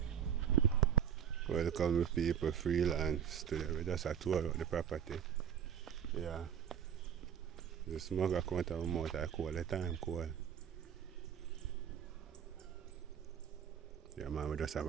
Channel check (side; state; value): left; quieter; 8.6 dB